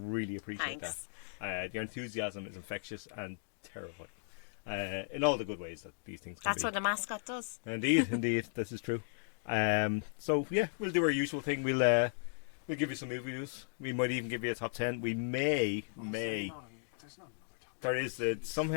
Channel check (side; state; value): right; silent; digital silence